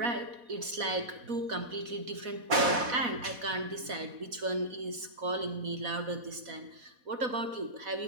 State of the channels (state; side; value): late; left; 4.1 ms